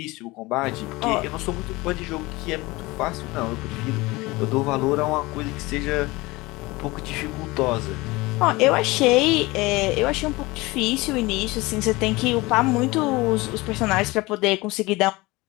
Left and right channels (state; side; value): quieter; right; 21.9 dB